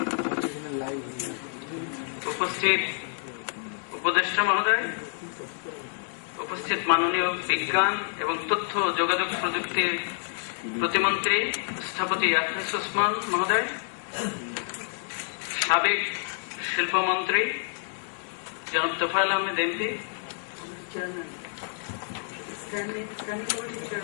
উপস্থিত উপদেষ্টা মহোদয়, উপস্থিত মাননীয় বিজ্ঞান এবং তথ্য যোগাযোগ প্রযুক্তির প্রতিমন্ত্রী স্থপতি আখলিস ওসমান মহোদয়, সাবেক শিল্পমন্ত্রী জনাব তোফায়েল আহমেদ এমপি,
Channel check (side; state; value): right; silent; 59 dB below the other